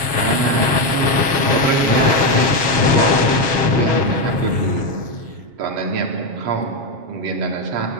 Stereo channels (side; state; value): left; late; 7.4 ms